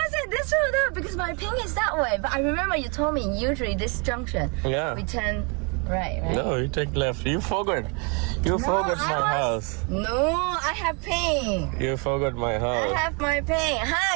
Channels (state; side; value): quieter; left; 33.9 dB